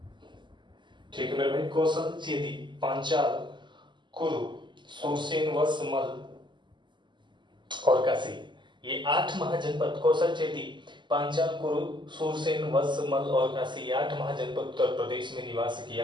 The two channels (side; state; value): left; late; 0.22 ms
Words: ठीक है मेरे भाई, कौशल, चेदी, पांचाल, कुरु, सुरसेन, वत्स, मल्ल और काशी, ये 8 महाजनपद कौशल, चेदी, पांचाल, कुरु, सुरसेन, वत्स, मल्ल और काशी, ये 8 महाजनपद उत्तर प्रदेश में निवास